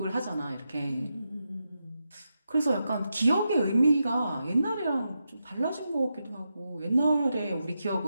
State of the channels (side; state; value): both; inverted; correlation -0.87